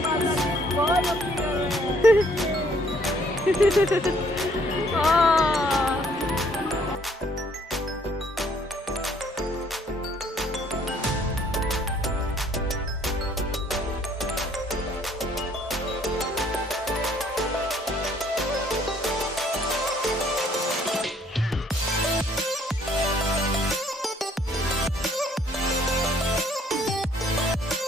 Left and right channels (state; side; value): normal; both; correlation 0.63